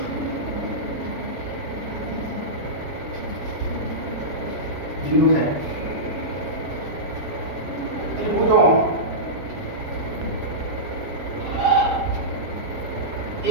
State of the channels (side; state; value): left; late; 7.4 ms